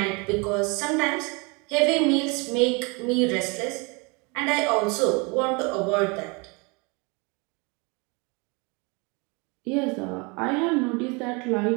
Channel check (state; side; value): quieter; left; 29.6 dB